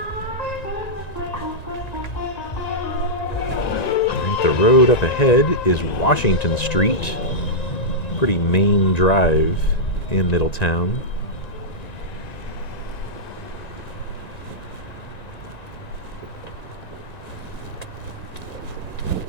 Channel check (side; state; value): right; late; 1.9 ms